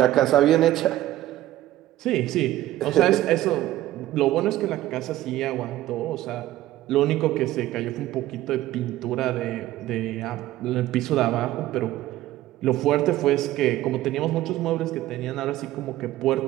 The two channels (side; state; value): left; quieter; 15.0 dB